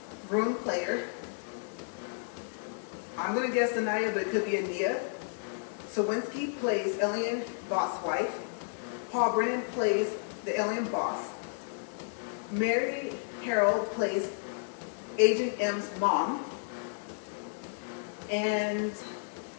room player. I'm gonna guess Anaya, but it could be Ania. Sawinski plays alien boss wife. Paul Brennan plays the alien boss. Mary Harold plays Agent M's mom. And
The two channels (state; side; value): silent; right; digital silence